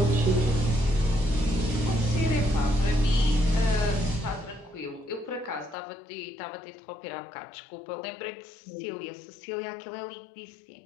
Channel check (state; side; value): drops out; right; at 5.8 s